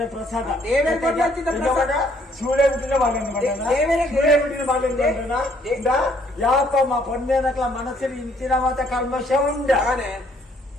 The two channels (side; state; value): both; normal; correlation 0.65